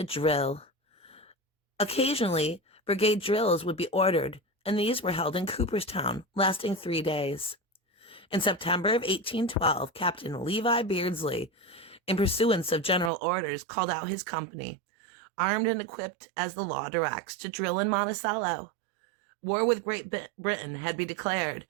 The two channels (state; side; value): drops out; left; at 13.1 s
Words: drill. Occasionally, brigade drills would be ordered, and these were held in Cooperstown, lasting 3 days. In September of 1812, Captain Levi Beardsley, in pursuance of general orders, called out his company, armed and equipped as the law directs, to drill in Monticello. War with Great Britain had been declared,